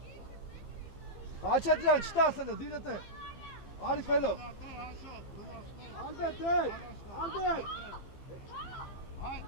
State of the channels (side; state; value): right; late; 15 ms